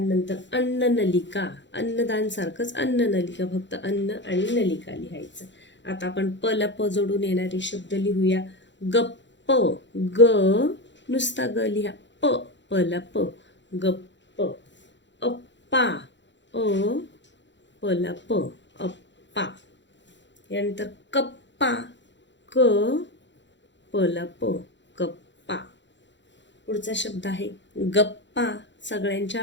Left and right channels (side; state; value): right; late; 0.53 ms